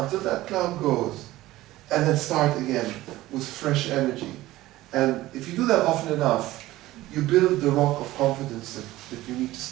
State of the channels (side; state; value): left; quieter; 16.8 dB